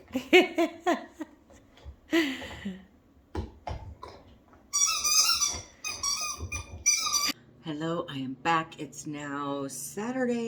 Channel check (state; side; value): identical; both; correlation 1.00